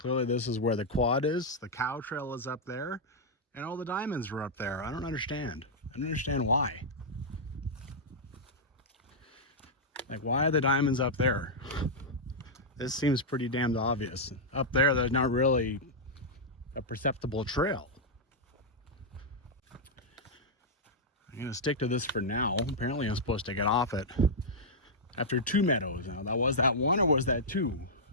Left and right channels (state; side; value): normal; both; correlation -0.06